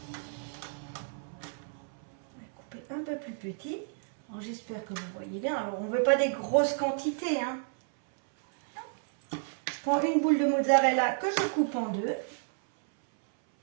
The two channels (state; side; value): silent; left; 57 dB below the other